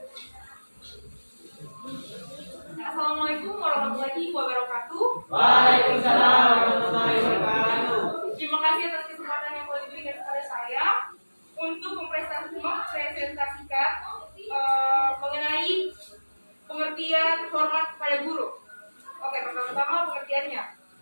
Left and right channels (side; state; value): both; inverted; correlation -1.00